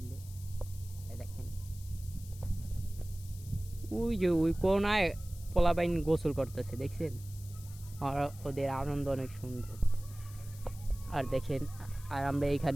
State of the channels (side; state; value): left; noise; hiss, 19 dB below the sound